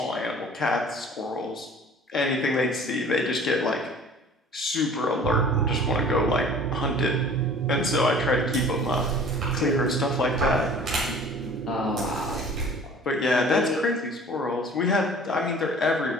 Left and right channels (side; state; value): both; normal; correlation 0.47